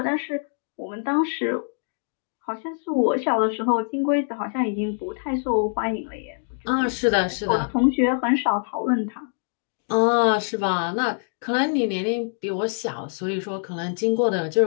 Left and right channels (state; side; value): silent; right; digital silence